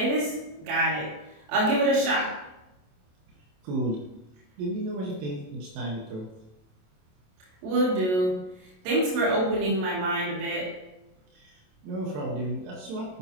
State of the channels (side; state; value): left; late; 27 ms